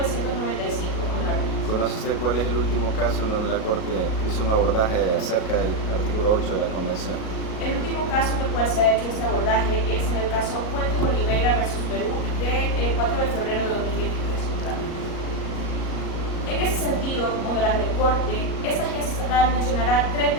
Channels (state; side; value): late; right; 37 ms